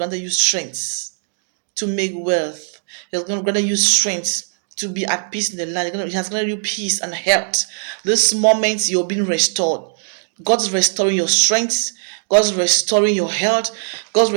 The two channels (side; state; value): left; silent; digital silence